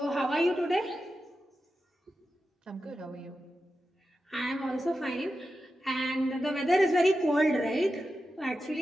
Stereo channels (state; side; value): normal; both; correlation 0.91